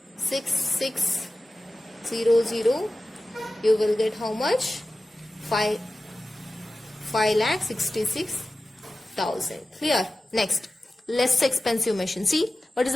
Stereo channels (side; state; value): both; normal; correlation 0.95